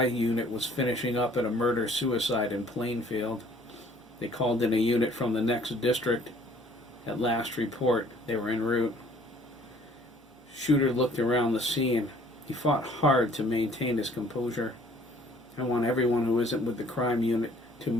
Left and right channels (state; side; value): normal; both; correlation 0.56